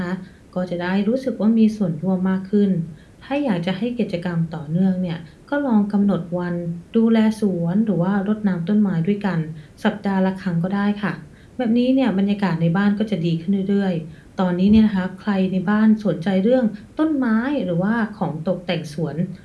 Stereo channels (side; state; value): both; identical; correlation 1.00